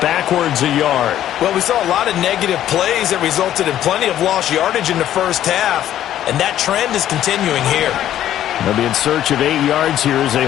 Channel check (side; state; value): right; quieter; 11.8 dB